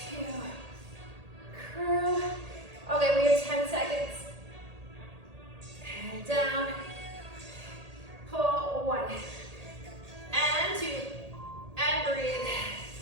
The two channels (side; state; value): left; late; 1.8 ms